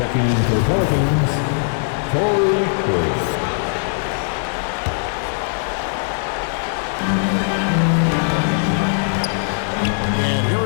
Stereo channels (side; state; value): right; silent; 63 dB below the other